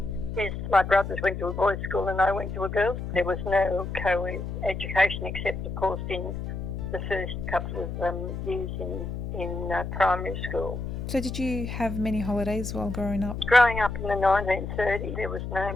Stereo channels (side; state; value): left; noise; hum, 5 dB below the sound